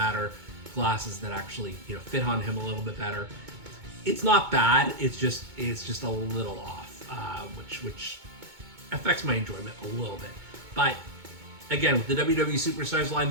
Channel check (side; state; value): left; late; 2.2 ms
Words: glasses that actually, you know, fit on him a little bit better. It's not bad. It's just a little off, which affects my enjoyment a little bit. But again, with the WWE Superstars line,